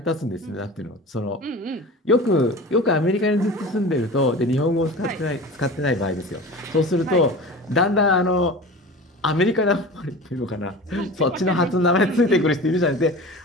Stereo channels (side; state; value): both; normal; correlation 0.35